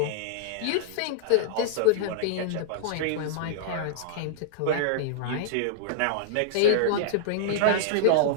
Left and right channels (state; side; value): different; both; correlation -0.01